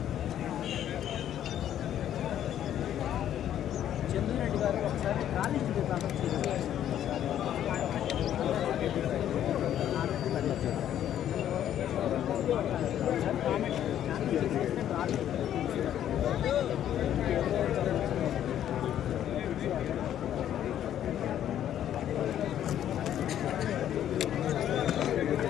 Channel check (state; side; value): quieter; right; 10.9 dB